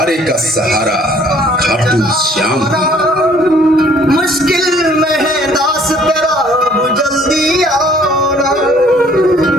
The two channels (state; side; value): normal; both; correlation 0.58